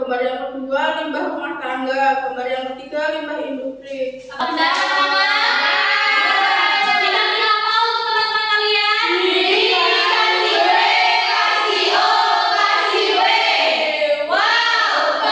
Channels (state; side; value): identical; both; correlation 1.00